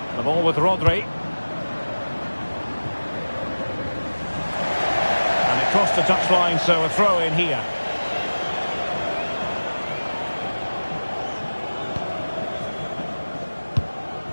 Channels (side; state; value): both; inverted; correlation -1.00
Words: The ball with Rodri. And it crossed the touchline, so a throw in here.